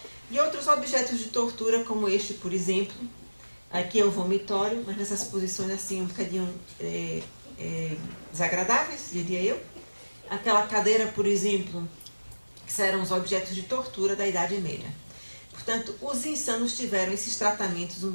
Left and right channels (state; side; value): inverted; both; correlation -1.00